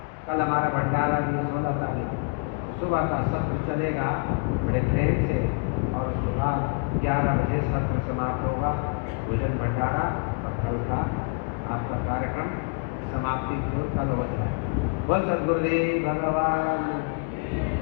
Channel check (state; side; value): quieter; right; 36.8 dB